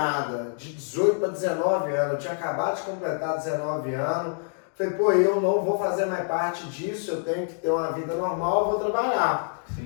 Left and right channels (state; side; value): silent; right; 61 dB below the other